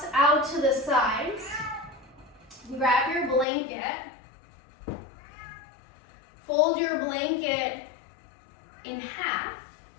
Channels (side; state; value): right; drops out; at 3.5 s